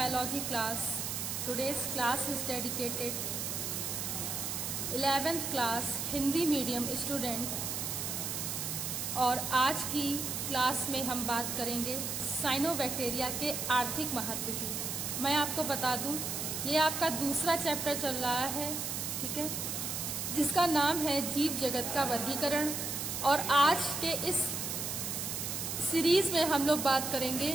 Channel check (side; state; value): right; noise; hiss, 3 dB below the sound